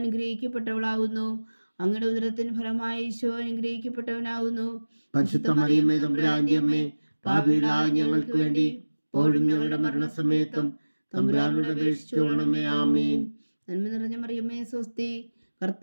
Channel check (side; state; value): both; inverted; correlation -1.00